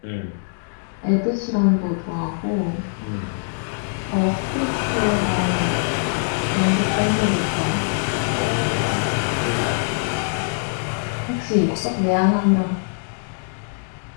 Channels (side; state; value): right; silent; 64 dB below the other